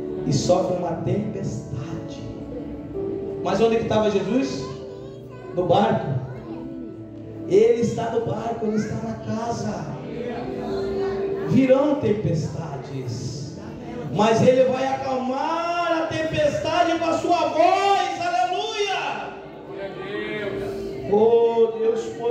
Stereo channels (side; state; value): both; identical; correlation 1.00